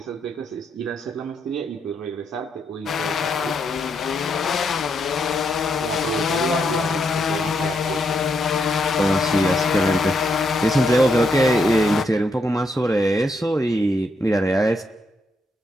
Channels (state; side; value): normal; both; correlation 0.78